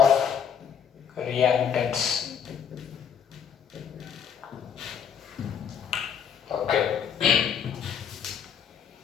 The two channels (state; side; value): quieter; right; 7.7 dB